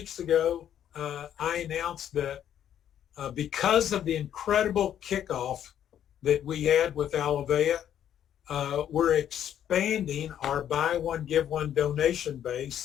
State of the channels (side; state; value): right; quieter; 10.1 dB